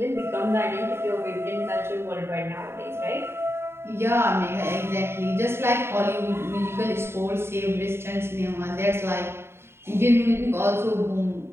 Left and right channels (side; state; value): left; late; 0.12 ms